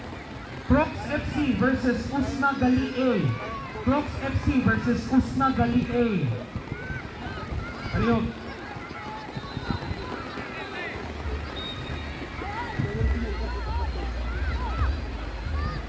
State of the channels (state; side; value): identical; both; correlation 1.00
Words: Crocs FC versus Usna Gali A. Crocs FC versus Usna Gali A. Ayun.